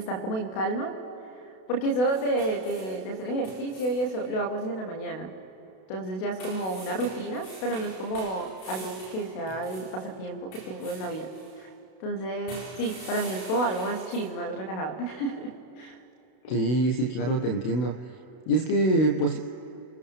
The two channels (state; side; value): late; right; 32 ms